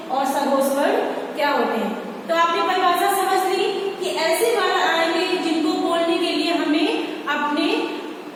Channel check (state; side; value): identical; both; correlation 1.00